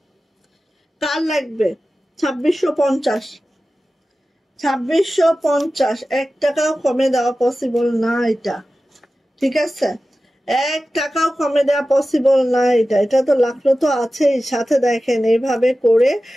2650, 2650। 1 টাকাও কমে দেওয়া পসিবল না এটা। ঠিক আছে, 1 টাকাও কমে দেওয়া পসিবল না এটা তো লাগলো তো আছেই সাথে। দেখেন এইভাবে করে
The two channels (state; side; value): normal; both; correlation 0.94